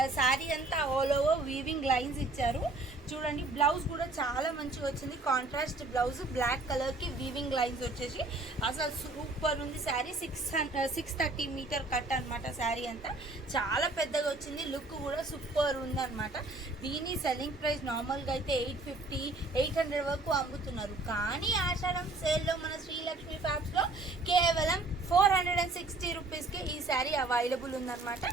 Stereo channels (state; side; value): quieter; left; 3.0 dB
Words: శారీ అంతా ఆల్ ఓవర్ వీవింగ్ లైన్స్ ఇచ్చారు. చూడండి బ్లౌజ్ కూడా చాలా మంచిగా వచ్చింది, కాంట్రాస్ట్ బ్లౌజ్ బ్లాక్ కలర్ కి వీవింగ్ లైన్స్ వచ్చేసి అసలు సూపర్ ఉంది శారీ. 630 మీటర్ కట్ అనమాట. శారీ అంతా చాలా పెద్దగా వచ్చింది, లుక్ కూడా సూపర్ ఉంది అనమాట. దీని సెల్లింగ్ ప్రైస్ నార్మల్ గా అయితే 850 800 వరకు అమ్ముతున్నారు. కానీ ఆషాఢం సేల్ లో మన శ్రీలక్ష్మి ఫ్యాబ్స్ లో కేవలం 460 రూపీస్కి ఈ శారీ అవైలబుల్ ఉందన్నమాట.